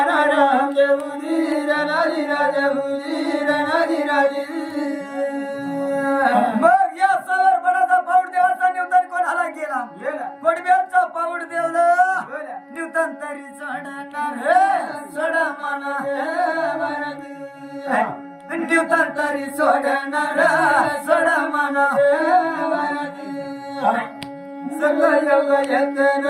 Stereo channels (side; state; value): both; identical; correlation 1.00